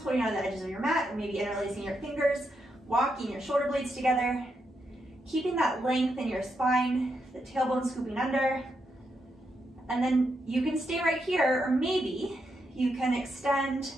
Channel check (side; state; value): both; normal; correlation 0.82